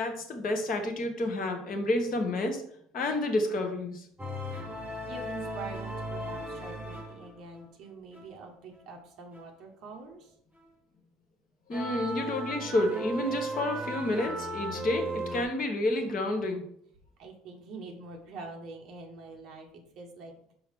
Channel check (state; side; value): normal; both; correlation 0.67